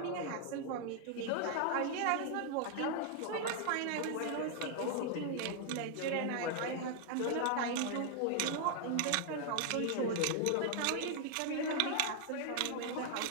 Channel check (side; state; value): both; different; correlation 0.00